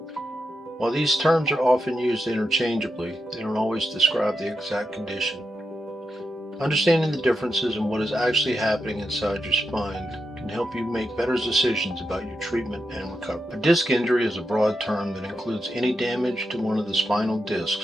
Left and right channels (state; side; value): normal; both; correlation 0.86